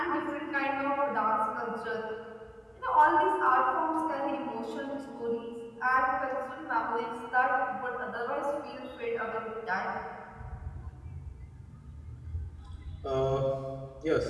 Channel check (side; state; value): both; identical; correlation 1.00